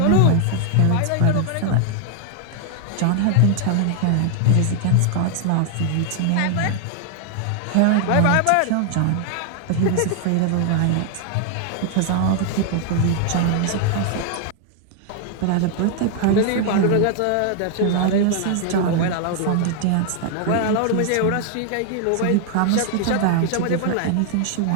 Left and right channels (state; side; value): different; both; correlation 0.00